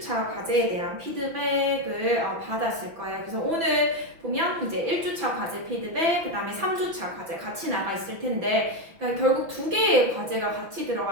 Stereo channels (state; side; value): late; left; 6.0 ms